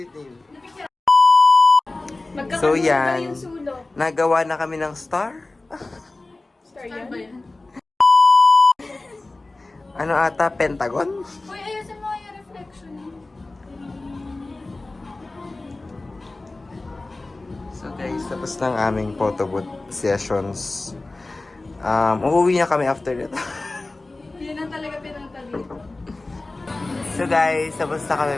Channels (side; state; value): right; quieter; 3.1 dB